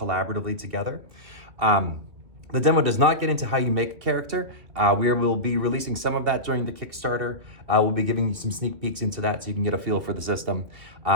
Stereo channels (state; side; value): late; left; 2.4 ms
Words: together. The demo does not get into how you make a character. We will be releasing some of that during the Kickstarter. We'll be giving you some sneak peeks into that so you can get a feel for the system.